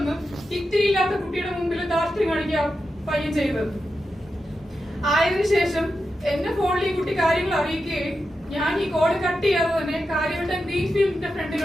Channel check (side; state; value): both; normal; correlation 0.89